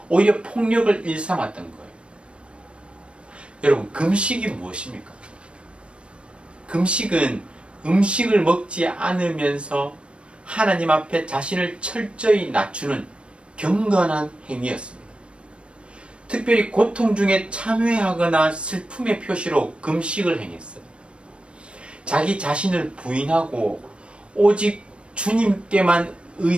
오히려 폭력을 일삼았던 거예요. 여러분, 금식이 무엇입니까? 금식은 음식을 먹지 않으면서 하나님 앞에 자신을 철저히 낮추는 경건한 행위였습니다. 특별히 고통 중에 참회하거나 슬픔의 표시로 금식을 행했어요. 자기 자신을 부인하고 오직 주님께만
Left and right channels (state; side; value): late; left; 0.058 ms